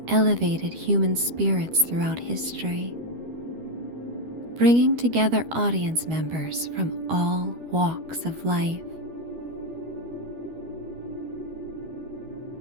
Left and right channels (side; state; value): left; late; 12 ms